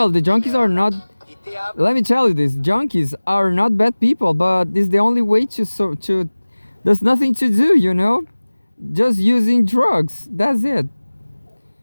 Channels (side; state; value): both; inverted; correlation -1.00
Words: the junkies are not, let me tell you this, junkies are not bad people, but it's the only way to there's nothing to do, just using drugs. That's it.